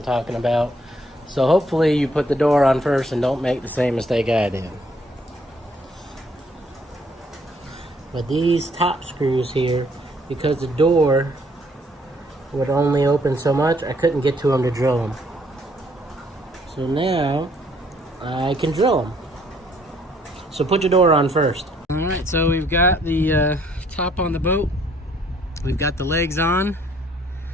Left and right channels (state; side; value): normal; both; correlation 0.65